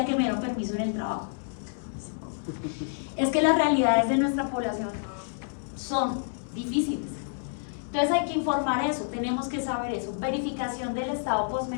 que me dieron permiso en el trabajo. Es que las realidades de nuestra población son difíciles. Entonces hay que informar eso, tenemos que saber eso. Verificación del estado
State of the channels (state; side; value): silent; right; digital silence